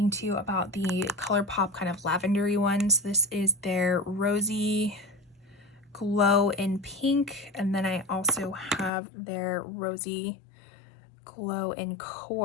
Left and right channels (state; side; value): drops out; right; at 8.9 s